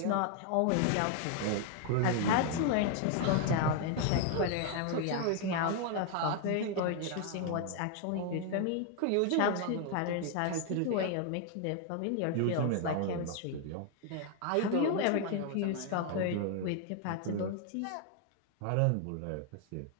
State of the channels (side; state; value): both; different; correlation 0.00